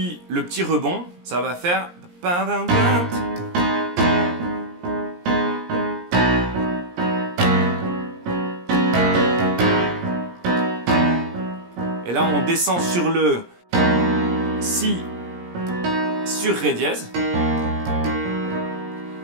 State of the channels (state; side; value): late; left; 17 ms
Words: rebond, ça va faire... Et là, on descend sur le si sur ré dièse,